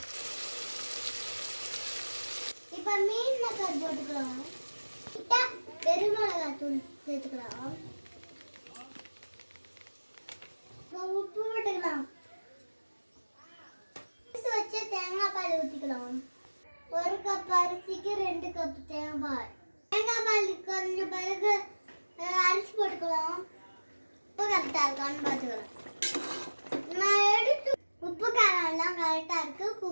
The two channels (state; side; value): inverted; both; correlation -1.00